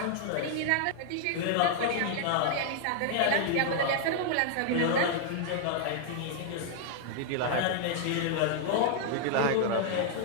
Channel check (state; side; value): different; both; correlation 0.00